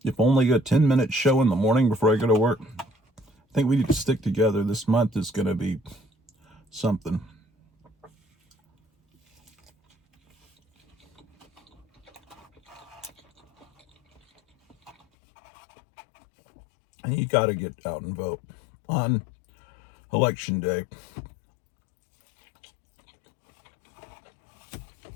if only a 10-minute show in the morning before I go to work. I think we need to stick together. This month is going to be something. And you got to get out and vote on Election Day.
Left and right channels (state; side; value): drops out; right; at 15.0 s